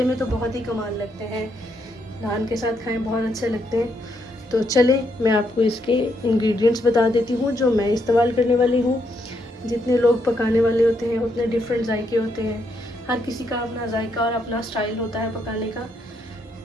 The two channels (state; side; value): normal; both; correlation 0.76